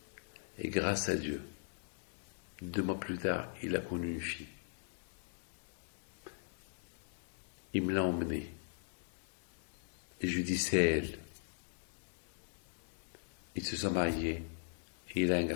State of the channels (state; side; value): silent; right; digital silence